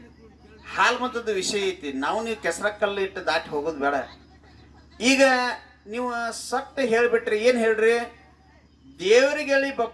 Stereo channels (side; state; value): both; identical; correlation 1.00